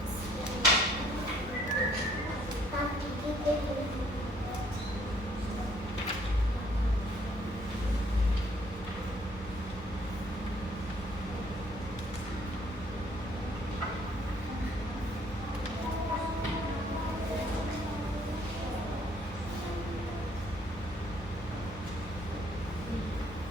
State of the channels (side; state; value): both; normal; correlation 0.64